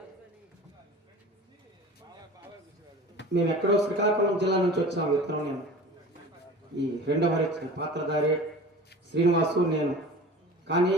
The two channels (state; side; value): normal; both; correlation 0.38